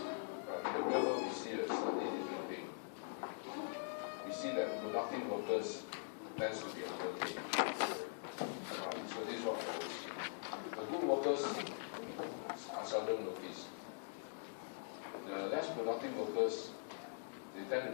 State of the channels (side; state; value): right; silent; digital silence